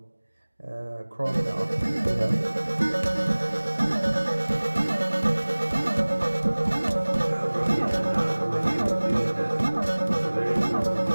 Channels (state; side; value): inverted; both; correlation -1.00